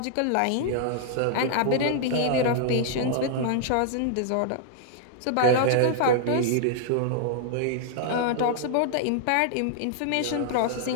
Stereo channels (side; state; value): both; different; correlation -0.01